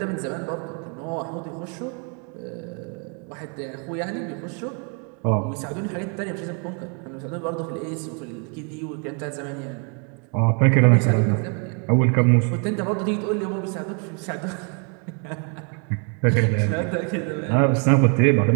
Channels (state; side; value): quieter; left; 37.5 dB